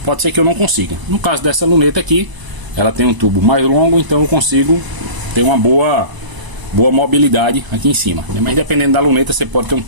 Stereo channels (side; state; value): left; late; 1.0 ms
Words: pode ser que eu não consiga. No caso dessa luneta aqui, ela tem um tubo mais longo, então eu consigo ter uma boa mobilidade aqui em cima, né? Mas dependendo da luneta você pode ter um